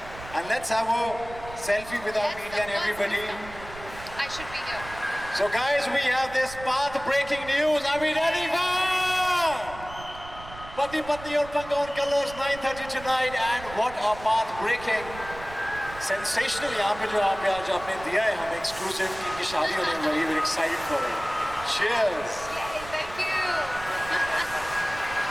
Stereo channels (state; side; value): noise; right; rumble, 15 dB below the sound